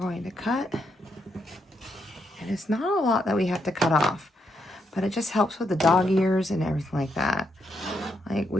to cut. And it's not a lot that we have to cut off, but it just helps with the dog ears and everything like that. Like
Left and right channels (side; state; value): both; normal; correlation 0.79